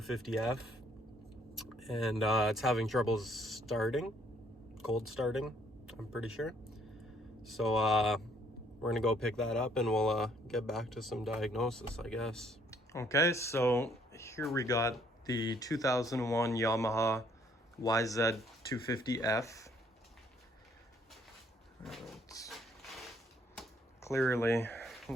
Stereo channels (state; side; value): normal; both; correlation 0.66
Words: and it's having trouble starting, cold starting, I'm pretty sure. So we're gonna go pick that up, and we'll get back to some diagnosis, I guess. Okay, so here we got the 2001 Yamaha YZ250F. It's clearly a